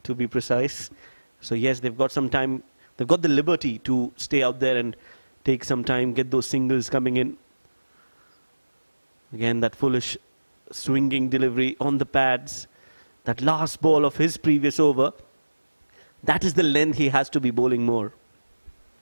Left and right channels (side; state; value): both; inverted; correlation -1.00